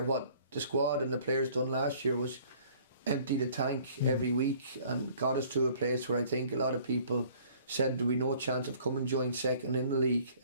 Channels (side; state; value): both; inverted; correlation -0.55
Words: What the squad and the players done last year was empty the tank every week and got us to a place where I think a lot of people said there would be no chance of coming joint second in the league,